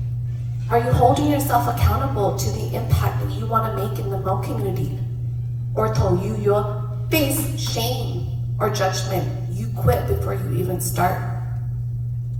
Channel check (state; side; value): identical; both; correlation 1.00